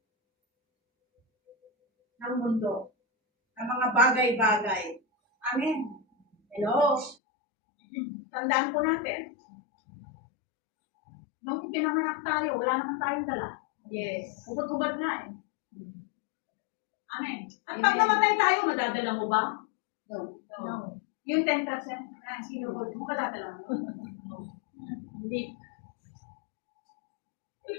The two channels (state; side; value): drops out; right; at 7.2 s